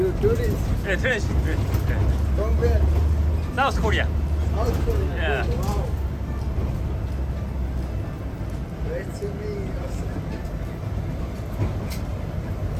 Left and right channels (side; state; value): both; identical; correlation 1.00